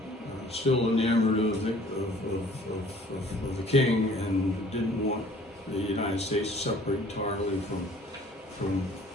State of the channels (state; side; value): normal; both; correlation 0.54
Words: still enamored of the king and didn't want the United States to separate entirely from